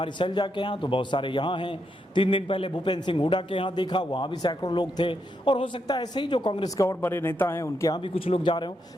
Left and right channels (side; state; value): both; normal; correlation 0.81